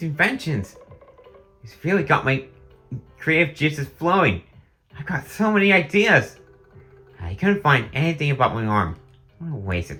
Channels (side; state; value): both; identical; correlation 1.00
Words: inventions? It's really got my creative juices flowing. I've got so many ideas. I couldn't find anything about my arm. What a waste of